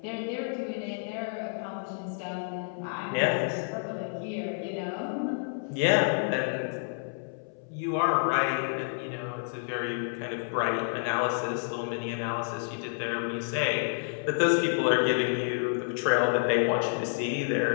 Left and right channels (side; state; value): right; silent; 58 dB below the other